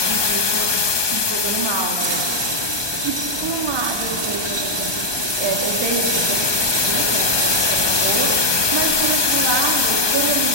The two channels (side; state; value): left; late; 1.2 ms